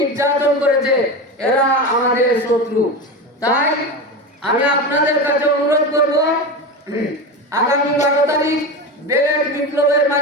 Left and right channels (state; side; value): normal; both; correlation 0.22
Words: করেছে, এরা আমাদের শত্রু। তাই আমি আপনাদের কাছে অনুরোধ করব, আগামী 12 তারিখ বেলেট বিপ্লবের